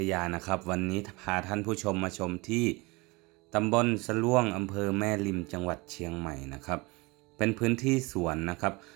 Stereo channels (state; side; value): quieter; left; 25.0 dB